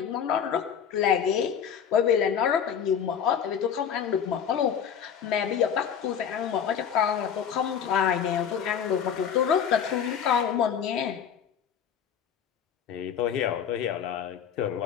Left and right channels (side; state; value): right; quieter; 8.0 dB